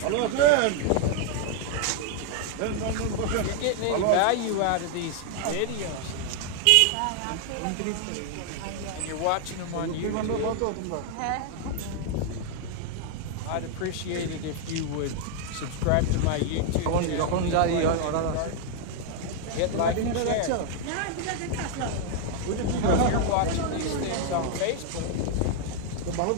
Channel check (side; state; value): both; different; correlation 0.00